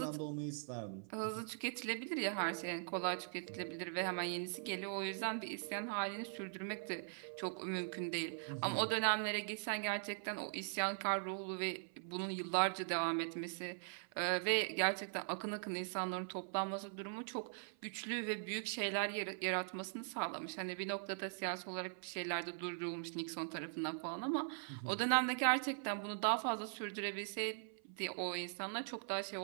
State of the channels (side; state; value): left; silent; 50 dB below the other